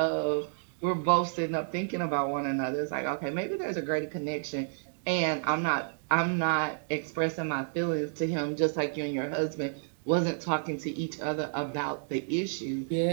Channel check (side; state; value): left; silent; digital silence